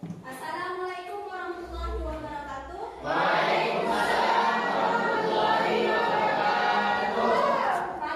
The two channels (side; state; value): both; identical; correlation 1.00